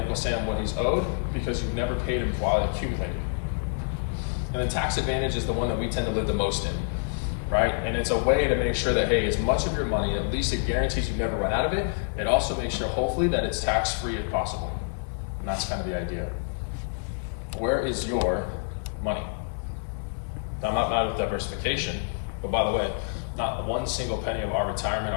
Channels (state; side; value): silent; right; 56 dB below the other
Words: Sam what he's owed because you've never paid him while it accumulated. And then tax advantage is the one that we tend to live the most in, right? And it's a way to make sure that, hey, as much of your money, at least it guarantees you never run out of it. It also makes sure, hopefully, that it's tax-free if possible. And that's kind of the idea. Where is your money. Now, I'm not mad with diversification, but by the way, not one single penny of our retirement,